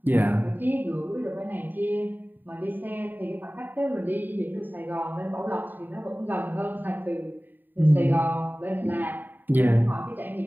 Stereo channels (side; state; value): left; late; 0.090 ms